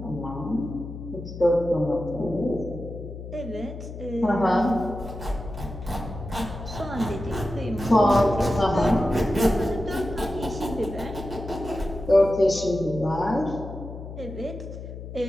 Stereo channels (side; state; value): left; noise; hum, 10 dB below the sound